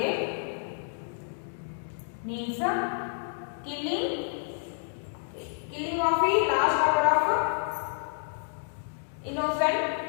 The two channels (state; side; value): silent; right; digital silence